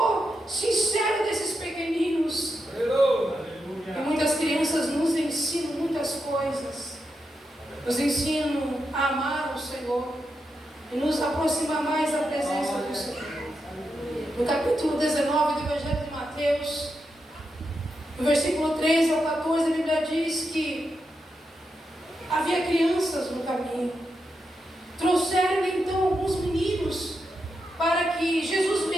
sincero desses pequeninos. E muitas crianças nos ensinam muitas coisas. Nos ensinam a amar o Senhor e nos aproximar mais da presença do Senhor. No capítulo 19 do Evangelho de Mateus, no versículo 13 ao 14, a Bíblia diz que havia crianças no caminho. Trouxeram então alguns meninos para que Jesus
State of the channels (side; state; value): both; normal; correlation 0.86